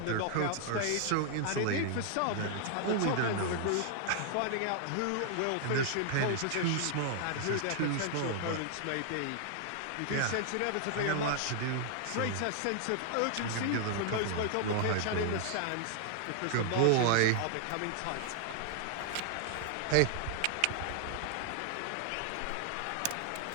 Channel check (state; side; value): different; both; correlation 0.00